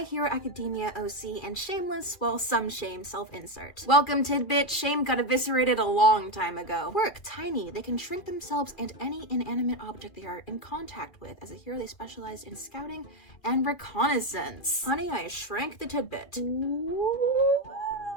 Hero Academia OC and shameless, well, some shame self-insert. Welcome, Tidbit. Shame got eviscerated a long time ago. Quirk, tiny. They can shrink themselves and any inanimate object they are in contact with. As a hero, they specialize in scouting and reconnaissance. Honey, I shrank the Tidbit.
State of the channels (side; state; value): right; late; 2.6 ms